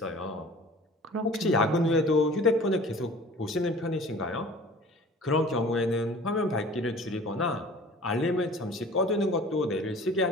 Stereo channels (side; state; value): both; normal; correlation 0.45